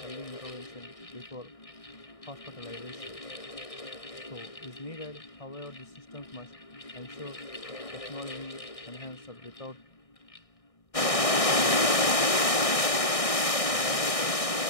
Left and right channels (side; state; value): right; late; 1.6 ms